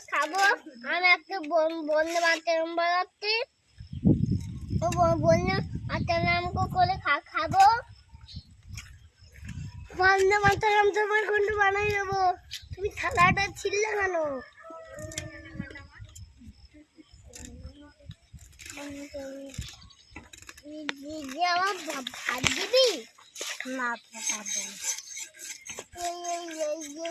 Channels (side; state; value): both; identical; correlation 1.00